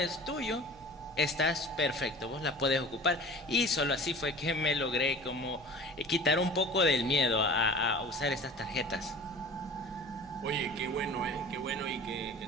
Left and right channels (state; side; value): noise; right; hum, 26 dB below the sound